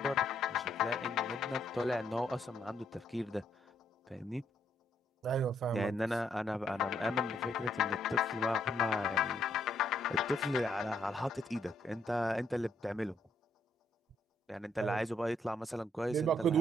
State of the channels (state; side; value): normal; both; correlation 0.72